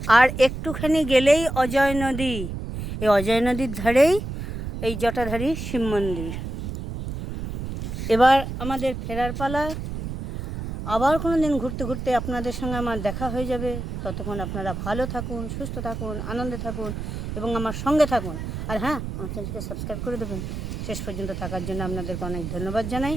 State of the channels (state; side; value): noise; right; rumble, 6 dB below the sound